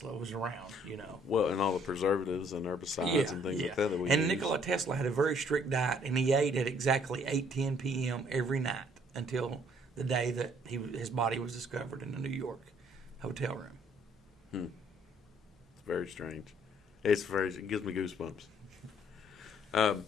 was around, Well, and all the preservatives and herbicides and things like that we And use. Nikola Tesla had a very strict diet, and he ate at exactly 8:10 p.m. every night until the day that his body was discovered in a New York hotel room. It's very strange. It gives me goosebumps.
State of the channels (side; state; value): both; normal; correlation 0.62